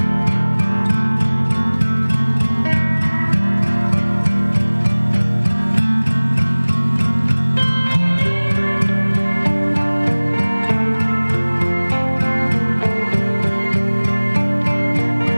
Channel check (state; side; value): inverted; both; correlation -1.00